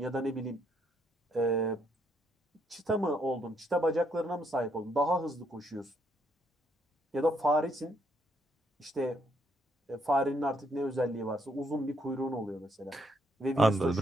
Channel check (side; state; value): both; normal; correlation 0.72